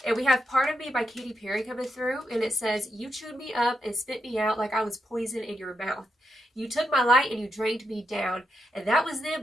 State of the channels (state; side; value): normal; both; correlation 0.84